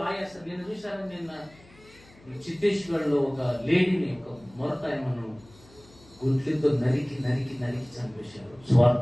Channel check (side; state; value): left; noise; hum, 26 dB below the sound